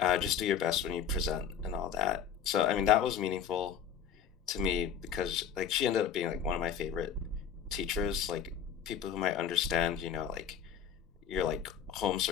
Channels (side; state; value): right; quieter; 8.1 dB